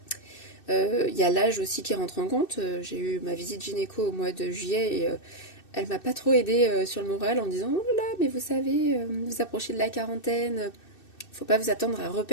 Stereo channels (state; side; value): late; right; 2.6 ms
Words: Y a l'âge aussi qui rentre en compte. J'ai eu ma visite gynéco au mois de juillet et elle m'a pas trop aidée sur le moral en me disant oh là là, mais vous savez, vous approchez de la quarantaine, faut pas vous attendre à